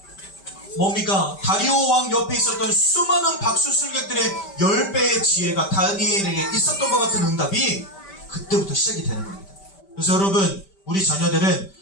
다리오 왕 옆에 있었던 수많은 박수술객들의 10배의 지혜가 다니엘에게 있었던 것 같은 응답이 그때부터 시작이 되는 겁니다. 그래서 여러분, 우리 자녀들은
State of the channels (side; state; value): right; late; 5.1 ms